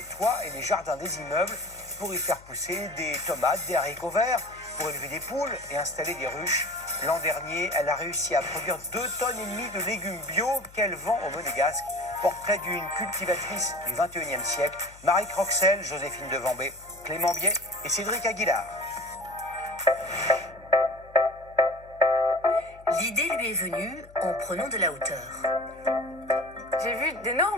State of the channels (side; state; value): left; noise; hum, 22 dB below the sound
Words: toits et les jardins des immeubles pour y faire pousser des tomates, des haricots verts, pour élever des poules et installer des ruches. L'an dernier, elle a réussi à produire 2,5 tonnes de légumes bio qu'elle vend au Monégasque. Portrait d'une cultivatrice du 21e siècle, Marie Croxel, Joséphine Devambé, Clément Biet et Cédric Aguilar. L'idée lui est venue en prenant de la hauteur. J'ai vu